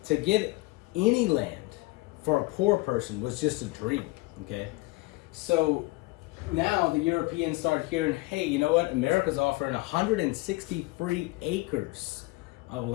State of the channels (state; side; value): quieter; right; 21.9 dB